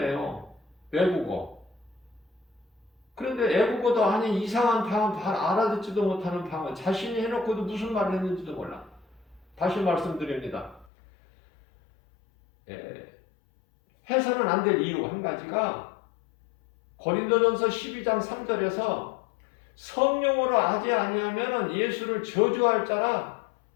외국어. 그런데 애국어도 아닌 이상한 방언, 알아듣지도 못하는 방언, 자신이 해놓고도 무슨 말을 했는지도 몰라. 다시 말씀드립니다. 해서는 안 될 이유 한 가지가 고린도전서 12장 3절에서 성령으로 하지 아니하면 예수를 저주할 자라.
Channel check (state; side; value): drops out; right; at 10.9 s